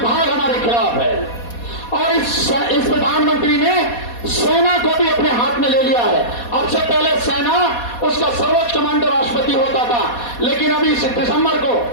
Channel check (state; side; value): late; right; 4.2 ms